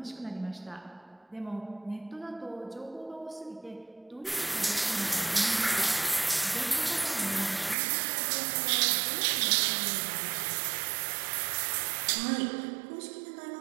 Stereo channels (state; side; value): drops out; left; at 7.8 s